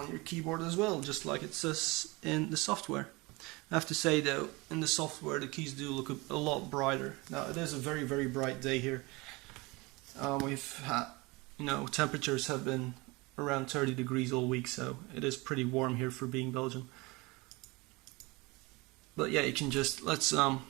your keyboard as well, just like it says in the software. I have to say though, in the software the keys do look a lot brighter. Now it is a very very bright day here. We've had, you know, temperatures have been around 30 degrees all week, so it is pretty warm here for being Belgium. But yeah, you can just, let's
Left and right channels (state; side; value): quieter; left; 24.4 dB